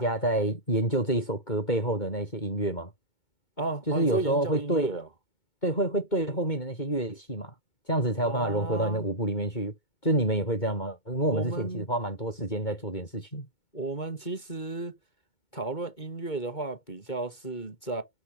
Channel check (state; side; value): late; right; 2.2 ms